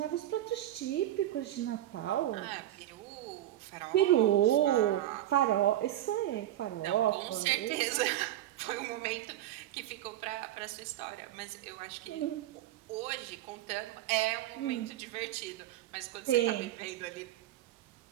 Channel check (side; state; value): left; quieter; 13.4 dB